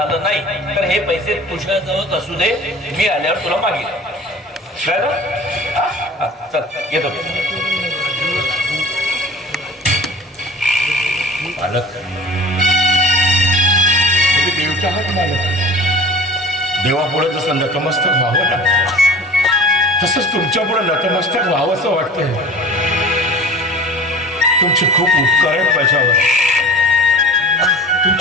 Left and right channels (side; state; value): both; normal; correlation 0.41